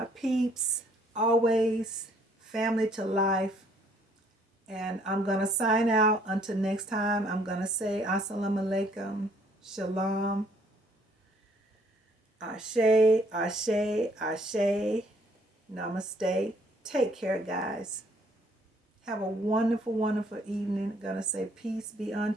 peeps. Always family to life. And I'm going to sign out. Until next time, I'm going to say Assalamu alaikum, Shalom, Ashe, Ashe, Ashe, Namaste. Take care, guys. Have a wonderful, wonderful evening. I'm going to say peace be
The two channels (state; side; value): normal; both; correlation 0.63